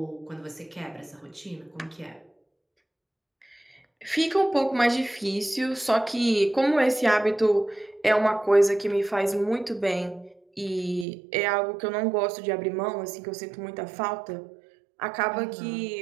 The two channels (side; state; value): left; drops out; at 11.1 s